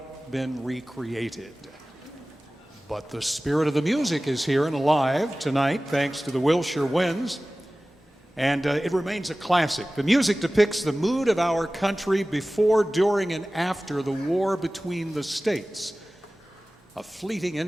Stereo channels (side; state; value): both; normal; correlation 0.97